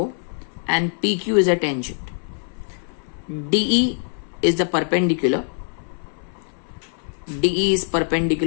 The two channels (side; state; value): right; silent; 63 dB below the other